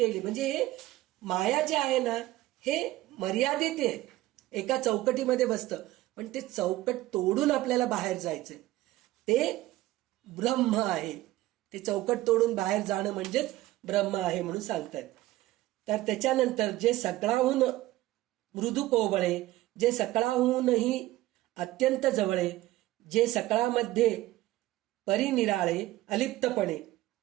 म्हणजे हे माया जे आहे ना, हे मर्यादित आहे, एका चौकटीमध्ये बसतं. पण ते चौकट तोडून आपल्याला बाहेर जायचंय, ते ब्रह्म आहे. ते चौकट तोडून बाहेर जाणं म्हणजेच ब्रह्म आहे म्हणून सांगतात. तर त्याच्यानंतर जे सगळाहून मृदू कोवळे, जे सकळाहूनही अत्यंत जवळे, जे सकळामध्ये परिनिराळे अलिप्तपणे,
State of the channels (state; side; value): quieter; left; 16.8 dB